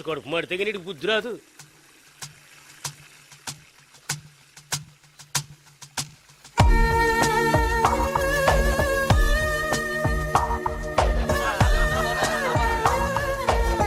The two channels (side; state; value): both; identical; correlation 1.00